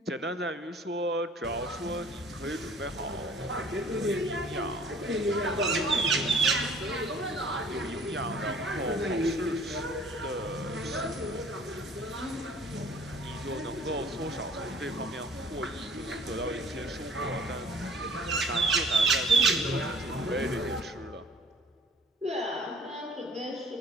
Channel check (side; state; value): both; normal; correlation 0.51